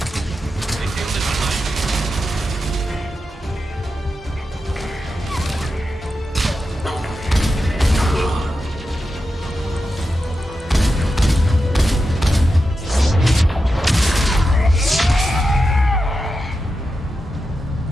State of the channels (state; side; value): normal; both; correlation 0.89